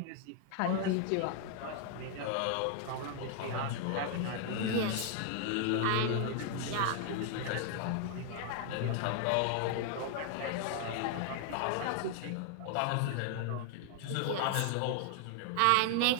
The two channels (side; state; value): both; different; correlation 0.00